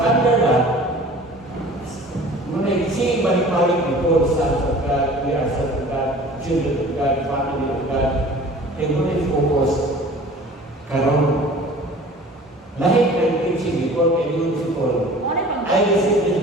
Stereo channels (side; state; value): both; normal; correlation 0.45